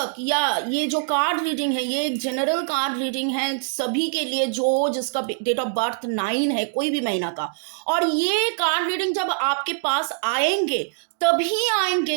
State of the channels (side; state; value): left; silent; 62 dB below the other